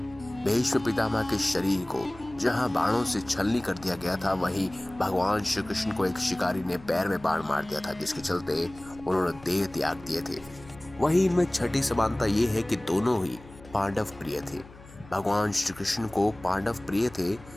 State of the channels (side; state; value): left; noise; hum, 20 dB below the sound